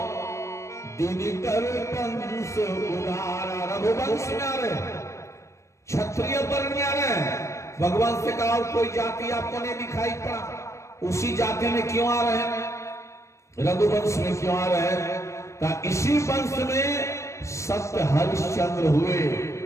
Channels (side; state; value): right; late; 0.14 ms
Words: दिनकर वंश उदारा। रघुवंश में आ रहे, क्षत्रिय वर्ण में आ रहे। भगवान से कहा कोई जाति आपको नहीं दिखाई पड़ा, उसी जाति में क्यों आ रहे हैं, रघुवंश में क्यों आ रहे हैं? इसी वंश में सत्य हरिश्चंद्र हुए,